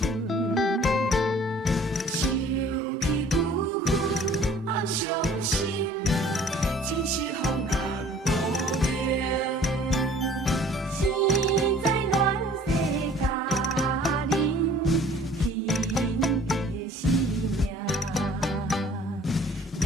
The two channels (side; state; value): both; normal; correlation 0.51